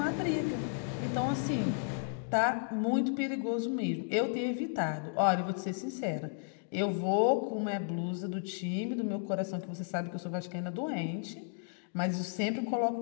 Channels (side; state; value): right; silent; digital silence